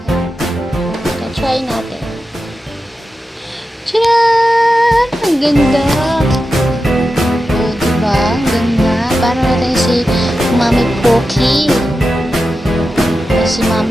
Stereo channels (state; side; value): normal; both; correlation 0.91